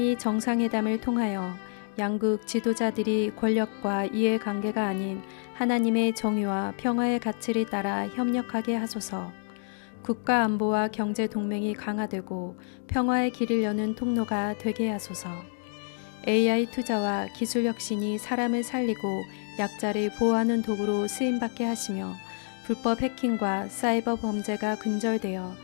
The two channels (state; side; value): silent; right; 59 dB below the other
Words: 정상회담을 통하여 양국 지도자들이 권력과 이해관계가 아닌 하나님의 정의와 평화의 가치를 따라 협력하게 하소서. 국가 안보와 경제 동맹이 강화되고 평화의 길을 여는 통로가 되게 하소서. AI 투자와 기술 혁신이 사람을 살리고 약자를 보호하는 도구로 쓰임받게 하시며 불법 해킹과 사이버 범죄가 근절되어